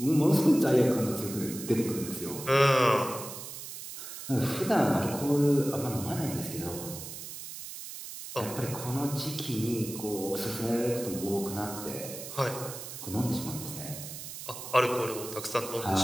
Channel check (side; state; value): right; noise; hiss, 10 dB below the sound